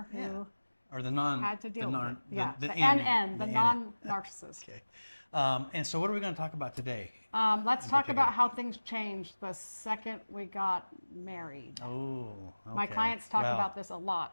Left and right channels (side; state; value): both; inverted; correlation -1.00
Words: who or the non had to deal the with it. the NN, the non-narcissist. Okay. And so what are we going to talk about today? Let's talk about how things changed the second we got married. Oh, okay. My clients talk about this a